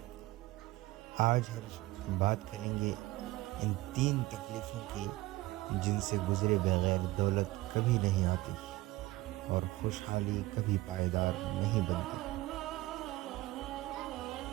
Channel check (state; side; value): quieter; left; 18.5 dB